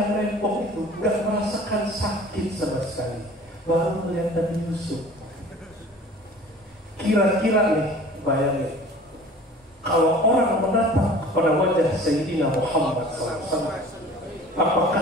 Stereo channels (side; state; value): both; normal; correlation 0.45